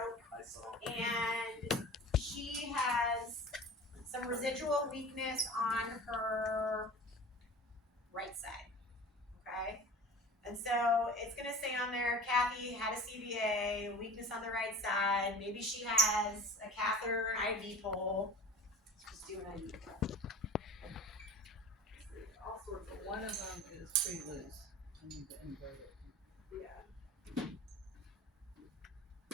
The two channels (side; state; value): both; normal; correlation 0.40